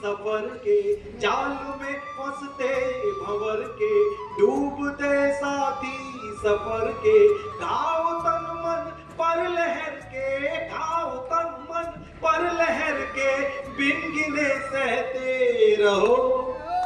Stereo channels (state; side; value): identical; both; correlation 1.00